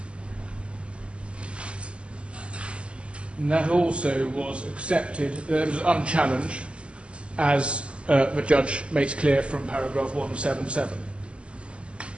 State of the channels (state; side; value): late; left; 0.055 ms